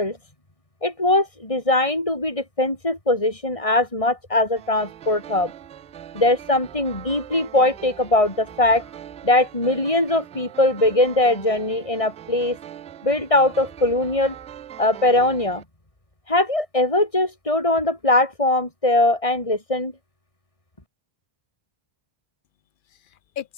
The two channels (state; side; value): late; right; 1.6 ms